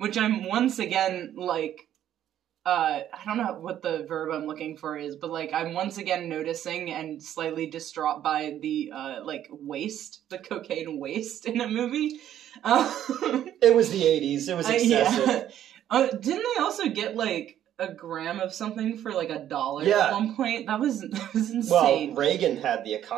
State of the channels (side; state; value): left; quieter; 11.1 dB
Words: I'm once again, I don't know what the verb I'm looking for is, but, I'm once again noticing and slightly distraught by the, waste, the cocaine waste in a movie. It was the 80s, it was excessive. Yeah. Didn't they also get, a gram of something for $1 at one point? That was insane. Well, Reagan had the